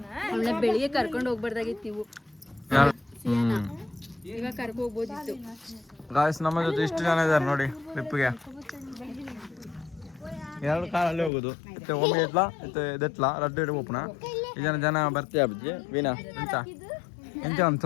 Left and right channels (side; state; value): right; drops out; at 11.3 s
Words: ಬೆಳಿಗ್ಗೆ ಕರ್ಕೊಂಡು ಹೋಗ್ಬಾರ್ದಾಗಿತ್ತು ನೀವು ಈಗ ಕರ್ಕೊಂಡು ಹೋಗ್ಬೋದಿತ್ತು ಗಾಯ್ಸ್ ನಮ್ಮ ಜೊತೆ ಇಷ್ಟು ಜನ ಇದ್ದಾರೆ ನೋಡಿ ಟ್ರಿಪ್ಗೆ 2 ಕಾರಲ್ಲಿ ಹೋಗೋದು ಮತ್ತೆ ಒಮ್ಮೆ ಎತ್ಲಾ ರಡ್ಡು ಓಪನ ಈ ಜನ ಬರ್ತೀಯ ಅಜ್ಜಿ ವೀಣಾ ಎಂತ